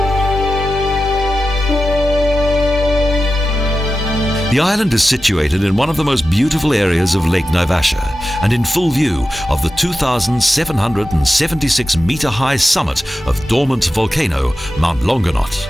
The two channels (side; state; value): both; normal; correlation 0.92